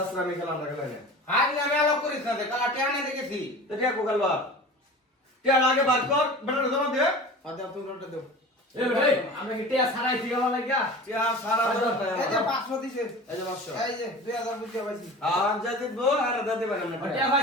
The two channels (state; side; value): normal; both; correlation 0.37